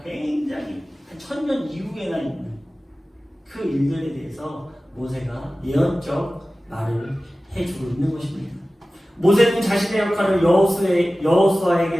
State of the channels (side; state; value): both; normal; correlation 0.96